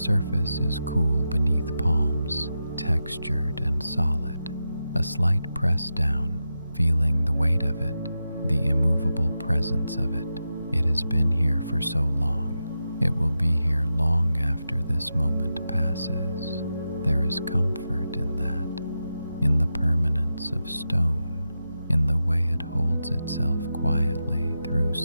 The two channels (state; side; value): inverted; both; correlation -0.90